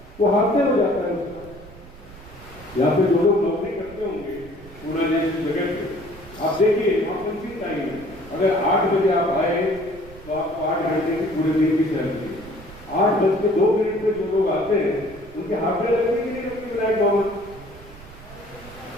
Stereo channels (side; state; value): right; noise; rumble, 19 dB below the sound